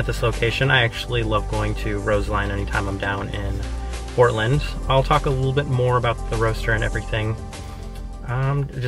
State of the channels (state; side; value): identical; both; correlation 1.00